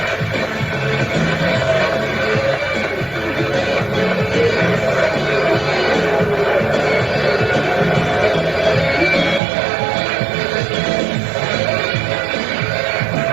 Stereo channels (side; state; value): left; drops out; at 9.4 s